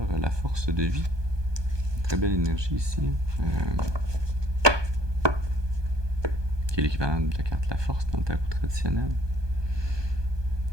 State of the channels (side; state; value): left; late; 1.2 ms